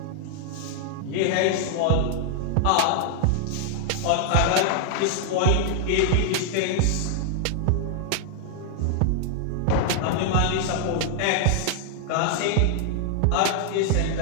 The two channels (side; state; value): both; different; correlation 0.00